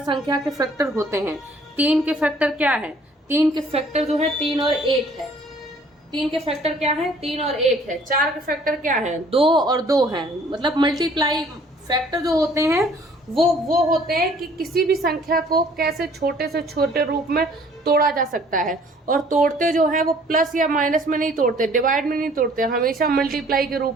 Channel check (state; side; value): normal; both; correlation 0.57